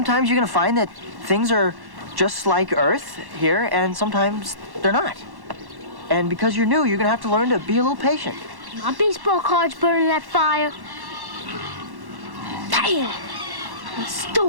you're gonna find that things are just like Earth here, and sometimes they're not. And because you're new, you're gonna have to learn to be a little patient. My baseball card's burning that fire. Damn! I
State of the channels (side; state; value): left; late; 1.1 ms